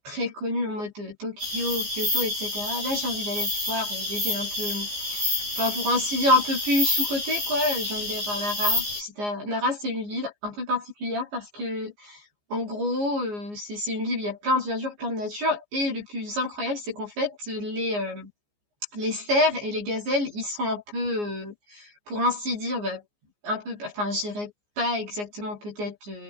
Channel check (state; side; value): late; left; 14 ms